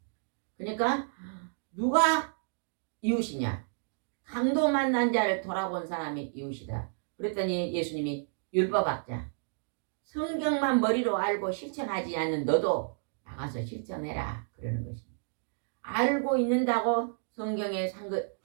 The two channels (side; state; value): left; silent; digital silence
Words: 그러니까 누가 이웃이냐? 강도 만난 자를 돌아본 사람이 이웃이다. 그랬더니 예수님이 율법학자, 성경만 머리로 알고 실천하지 않는 너도 나가서 실천해라 그러는 것입니다. 알고 있는다고 성경에